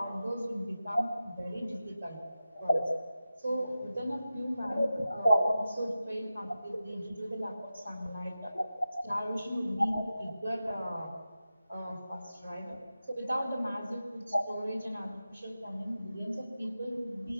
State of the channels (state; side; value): inverted; both; correlation -0.93